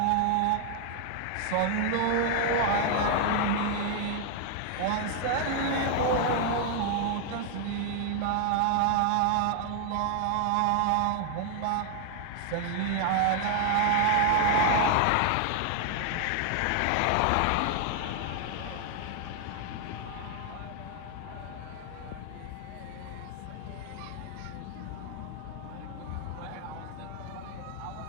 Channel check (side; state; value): both; different; correlation 0.00